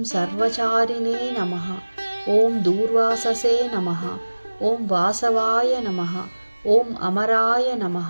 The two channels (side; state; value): both; inverted; correlation -1.00